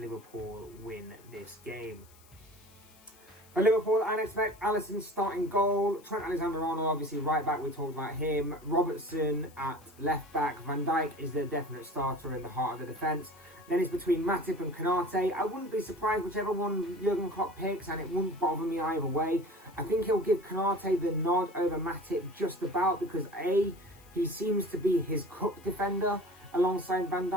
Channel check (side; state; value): left; noise; hiss, 26 dB below the sound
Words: win this game. For Liverpool, I'd expect Alisson starting goal. Trent Alexander-Arnold, obviously right back, we talked about him. Robertson at left back. Van Dijk is the definite starter in the heart of the defence. Then it's between Matip and Konate. I wouldn't be surprised whichever one Jurgen Klopp picks, and it wouldn't bother me either way. I think he'll give Konate the nod over Matip just about because A, he seems to be his cup defender alongside Van